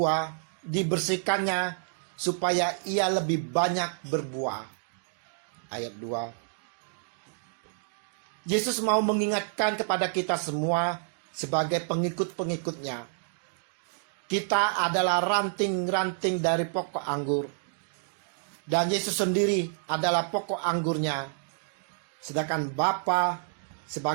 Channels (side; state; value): left; silent; digital silence